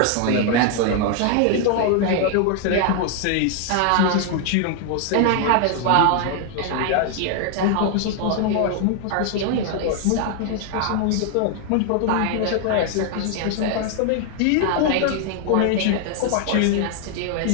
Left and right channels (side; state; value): both; different; correlation 0.00